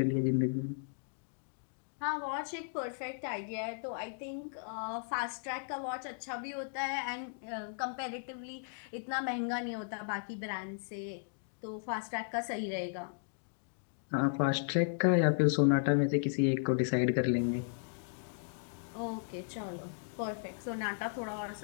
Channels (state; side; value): silent; right; digital silence